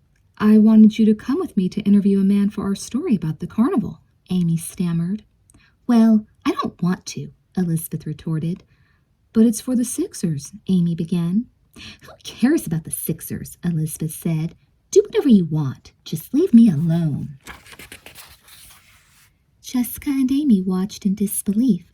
wanted you to come with me to interview a man for our story about the carnival, Amy stammered. Well, I don't want to, Elizabeth retorted. But it's for the Sixers, Amy began. Who cares about the Sixers? Elizabeth said. Do whatever you want. Just leave me alone. Jessica and Amy watched in disbelief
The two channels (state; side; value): identical; both; correlation 1.00